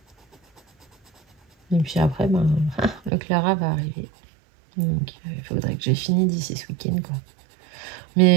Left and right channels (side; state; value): left; drops out; at 3.1 s